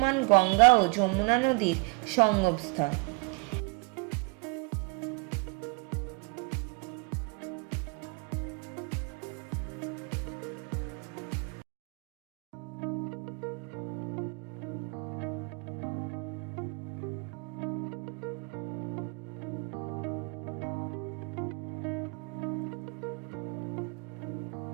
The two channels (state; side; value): quieter; left; 32.8 dB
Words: গঙ্গা ও যমুনা নদীর সঙ্গমস্থল।